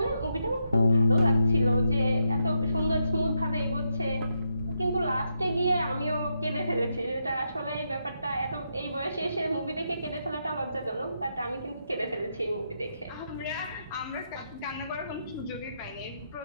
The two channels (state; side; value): inverted; both; correlation -0.82